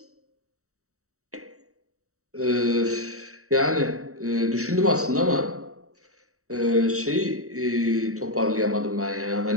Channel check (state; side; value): late; left; 0.64 ms